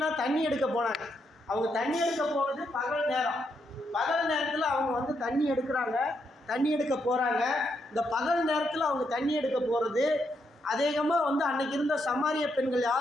தண்ணி எடுக்க போனாங்க. அவங்க தண்ணி எடுக்க போகிறது பகல் நேரம். பகல் நேரத்தில் அவங்க தண்ணி எடுக்கிறாங்க, தண்ணி எடுக்க போகிறாங்க. இந்த பகல் நேரத்தில் அவங்க தண்ணி எடுக்க போகிறது அதிகமாக அன்னைக்கு இருந்த சமாரிய பெண்கள்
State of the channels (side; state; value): both; normal; correlation 0.79